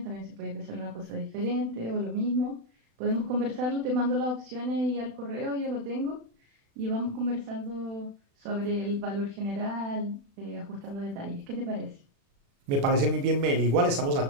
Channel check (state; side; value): late; left; 36 ms